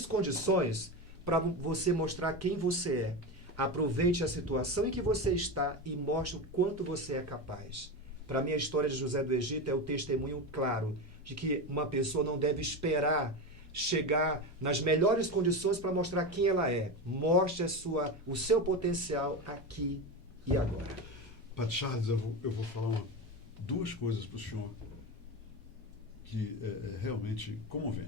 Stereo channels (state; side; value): normal; both; correlation 0.20